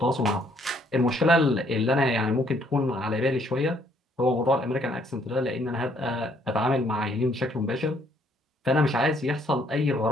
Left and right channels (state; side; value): normal; both; correlation 0.67